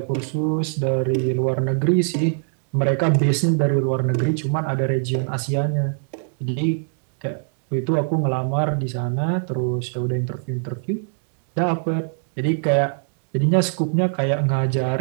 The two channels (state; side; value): silent; left; digital silence